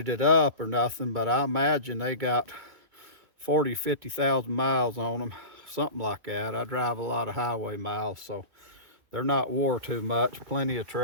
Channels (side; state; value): left; late; 2.3 ms